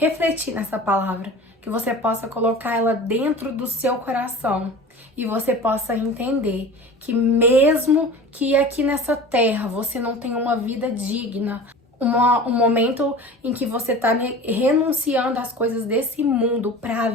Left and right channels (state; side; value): normal; both; correlation 0.37